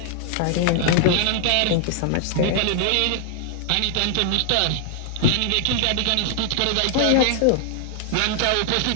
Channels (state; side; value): different; both; correlation 0.00